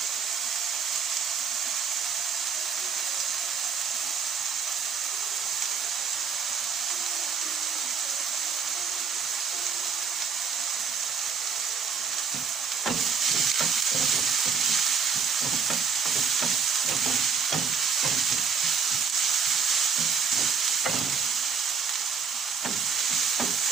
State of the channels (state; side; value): quieter; left; 6.2 dB